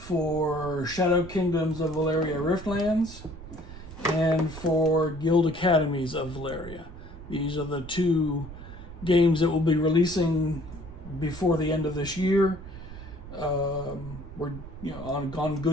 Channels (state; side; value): noise; right; rumble, 14 dB below the sound